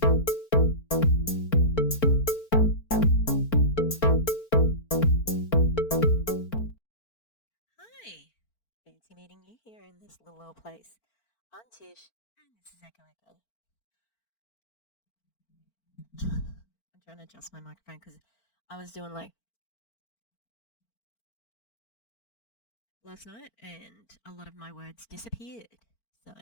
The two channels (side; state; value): right; late; 4.4 ms